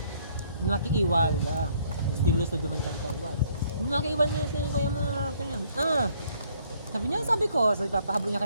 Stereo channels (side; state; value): both; inverted; correlation -0.64